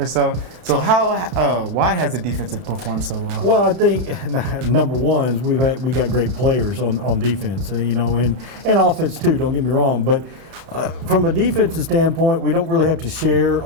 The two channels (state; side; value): late; left; 32 ms